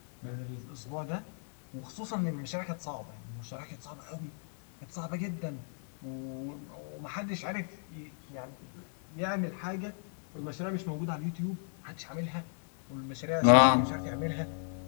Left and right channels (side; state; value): right; silent; digital silence